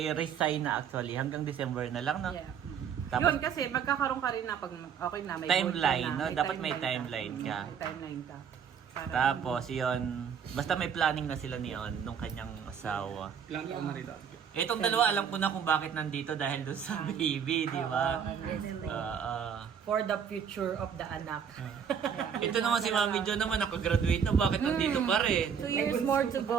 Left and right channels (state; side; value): quieter; left; 7.5 dB